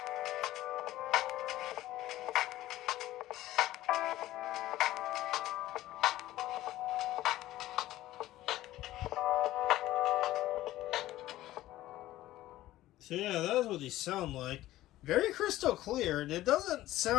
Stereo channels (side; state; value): right; quieter; 15.4 dB